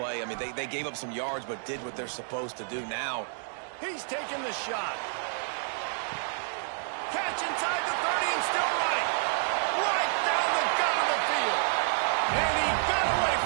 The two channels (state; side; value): silent; left; digital silence